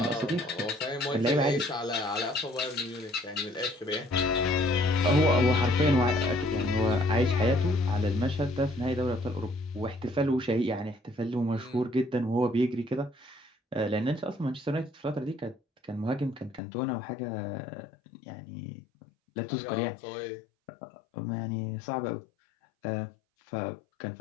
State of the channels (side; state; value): right; drops out; at 16.6 s